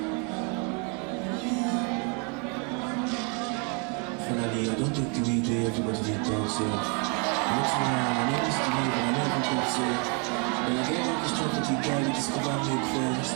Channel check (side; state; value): left; quieter; 34.0 dB